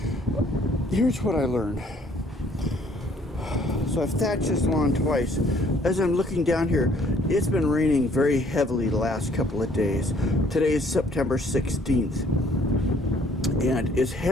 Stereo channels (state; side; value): normal; both; correlation 0.61